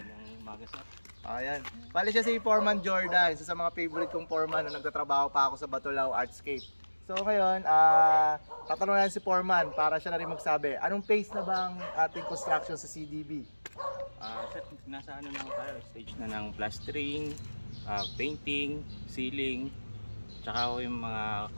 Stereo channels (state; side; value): inverted; both; correlation -1.00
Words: Ayan. Bali siya si Foreman Jordan, isa sa mga favorite kong foreman na nagtatrabaho pa ako sa Batulao Artscape. So ngayon, tatanungin si Foreman para siya na rin magsabi, anong phase na ba ang ating construction sa CDB? Nasa ano na tayo, stage na ng plastering, painting, ceiling, tsaka yung mga